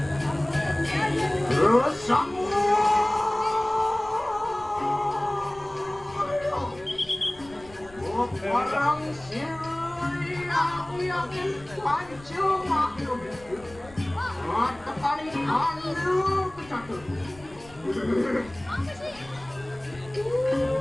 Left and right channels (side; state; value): left; noise; rumble, 22 dB below the sound